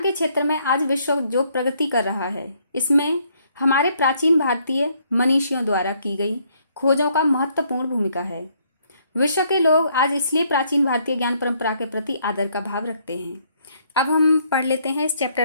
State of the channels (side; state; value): both; inverted; correlation -0.69